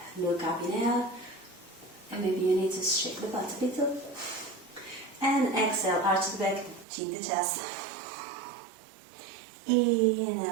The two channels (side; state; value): left; drops out; at 6.9 s